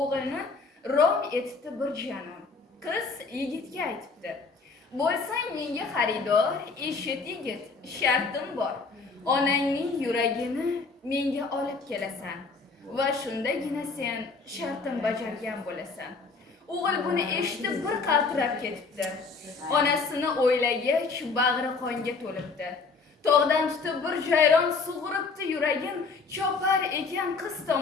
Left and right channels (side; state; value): right; quieter; 4.5 dB